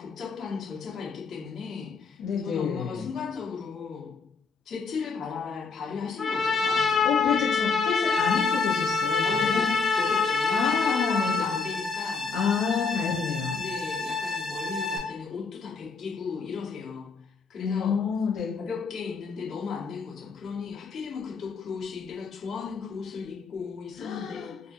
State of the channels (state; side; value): quieter; right; 4.9 dB